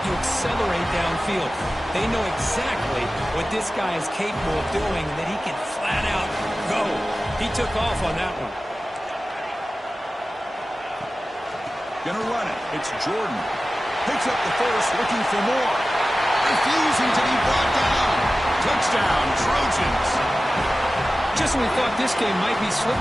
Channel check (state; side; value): normal; both; correlation 0.95